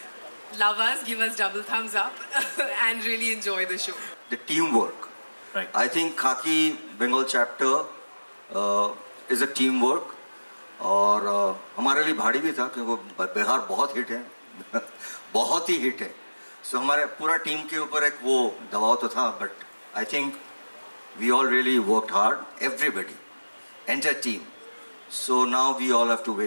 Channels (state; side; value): inverted; both; correlation -1.00